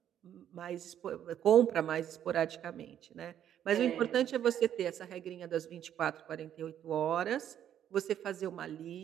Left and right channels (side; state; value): left; quieter; 10.3 dB